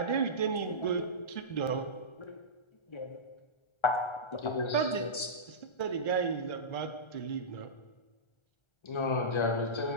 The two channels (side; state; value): right; late; 1.3 ms